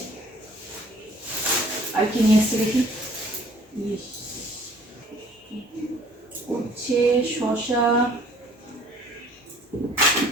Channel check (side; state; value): both; normal; correlation 0.55